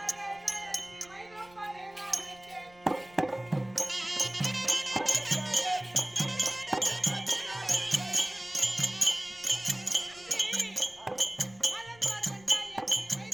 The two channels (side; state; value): left; noise; rumble, 26 dB below the sound